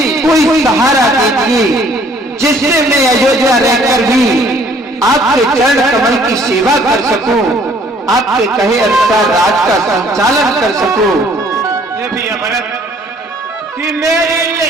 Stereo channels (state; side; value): normal; both; correlation 0.59